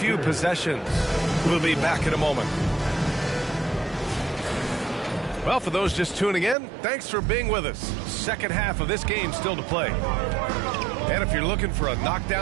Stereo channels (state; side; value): drops out; left; at 6.6 s